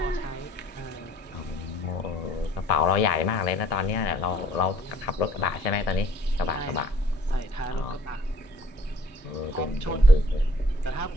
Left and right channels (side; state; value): right; late; 1.7 ms